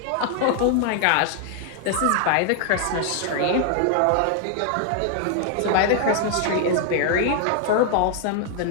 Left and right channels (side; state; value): both; different; correlation 0.00